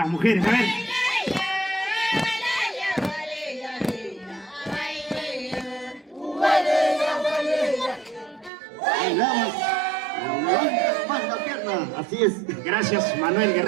mujeres? A ver. Así es. Gracias, Manuel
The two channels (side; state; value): left; drops out; at 8.5 s